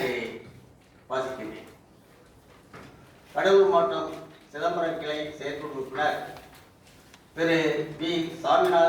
வாசிக்கின்றேன். கடலூர் மாவட்டம் சிதம்பரம் கிளை செயற்குழு உறுப்பினர் திரு பி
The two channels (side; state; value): both; identical; correlation 1.00